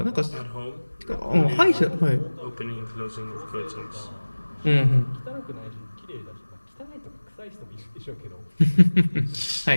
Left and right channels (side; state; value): both; inverted; correlation -1.00